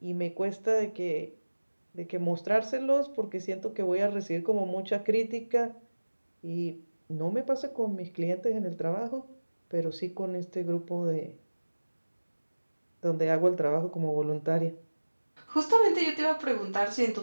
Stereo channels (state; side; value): inverted; both; correlation -1.00